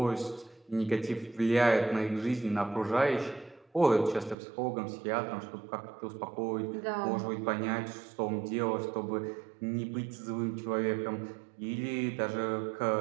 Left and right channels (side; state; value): left; drops out; at 4.4 s